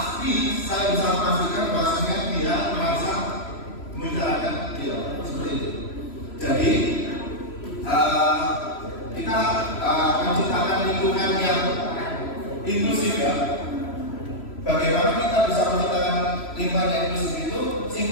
saya bisa memastikan bahwasanya dia merasa membicarakan beliau seperti itu. Jadi kita menciptakan lingkungan yang inklusif ya. Bagaimana kita bisa menciptakan lingkungan yang inklusif itu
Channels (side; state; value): right; late; 3.0 ms